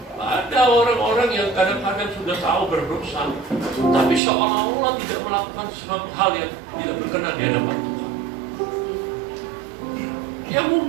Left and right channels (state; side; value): drops out; left; at 4.2 s